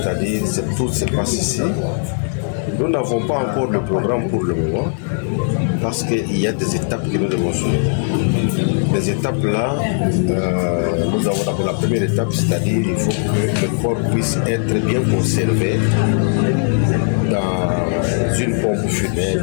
tout se passe ici. Nous n'avons pas encore le programme pour le moment parce qu'il y a des étapes que nous devons suivre. Les étapes là, nous avons d'abord la première étape, c'est-à-dire il faut que le corps puisse être bien conservé dans une pompe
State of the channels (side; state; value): right; silent; 60 dB below the other